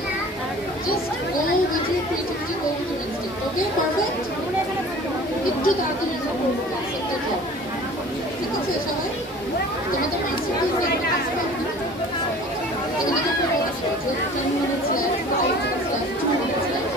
Just go with your creativity, go with your instinct. Okay, perfect? একটু তাড়াতাড়ি করবো ক্লাসটা যাও। ঠিক আছে সবাই? তোমাদের মাস্টারপিস দেখে কাজ করবে না? এখানে তো বলেছে যে 10 minutes left, 5 minutes left, 2 minutes left.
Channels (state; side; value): normal; both; correlation 0.45